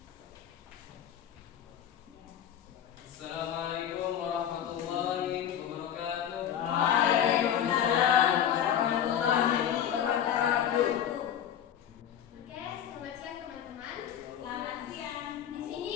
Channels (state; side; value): quieter; right; 9.7 dB